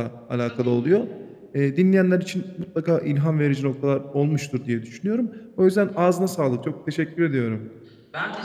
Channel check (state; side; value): identical; both; correlation 1.00